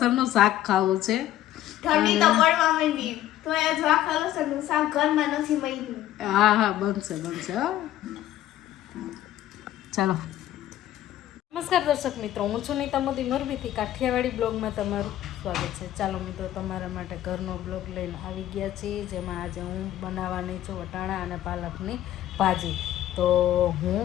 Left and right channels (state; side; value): quieter; right; 13.2 dB